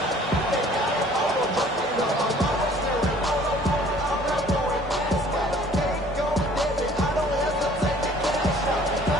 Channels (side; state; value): both; normal; correlation 0.54